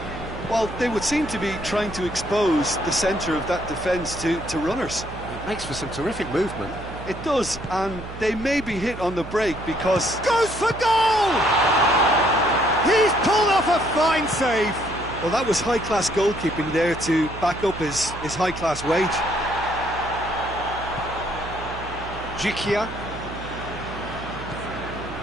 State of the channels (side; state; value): right; noise; hum, 12 dB below the sound